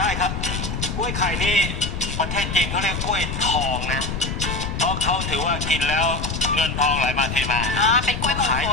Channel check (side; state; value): left; noise; rumble, 4 dB below the sound